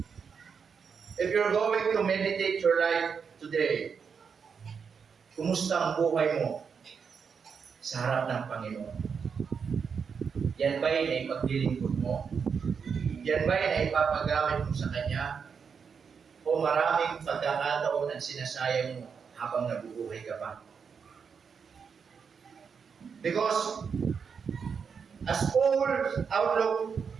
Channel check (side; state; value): left; quieter; 6.2 dB